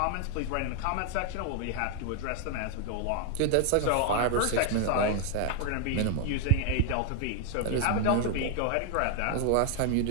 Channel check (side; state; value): both; different; correlation 0.00